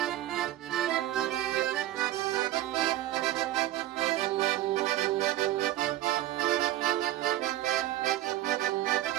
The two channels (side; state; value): left; quieter; 14.4 dB